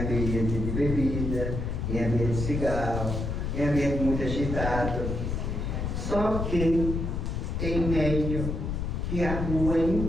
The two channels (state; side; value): noise; left; rumble, 2 dB below the sound